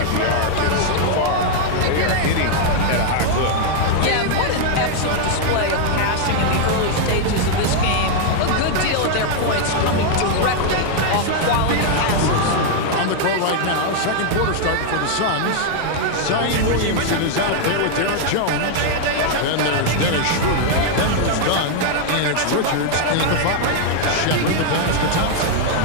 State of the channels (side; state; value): both; different; correlation 0.00